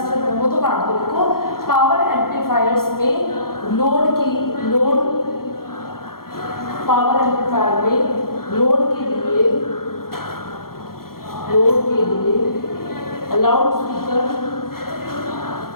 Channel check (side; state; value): right; late; 0.93 ms